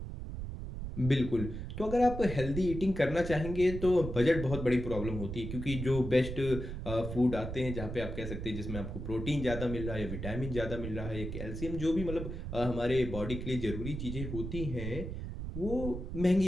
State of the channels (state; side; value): noise; right; rumble, 6 dB below the sound